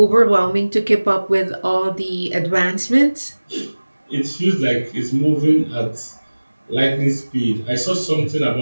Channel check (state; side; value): inverted; both; correlation -1.00